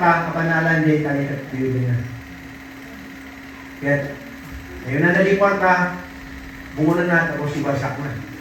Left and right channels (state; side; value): identical; both; correlation 1.00